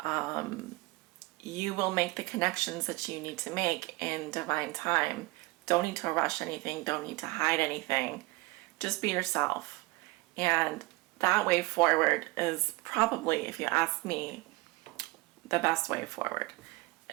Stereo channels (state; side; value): quieter; left; 22.8 dB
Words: You will make the connections that you need to make in divine time. Don't need to rush anything. Don't need to hide anything. Just be yourself. And that way forward is probably, if you ask me, the best way forward,